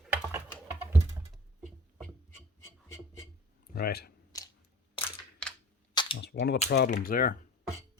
Right. That's one of the problems there.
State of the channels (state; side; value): normal; both; correlation 0.43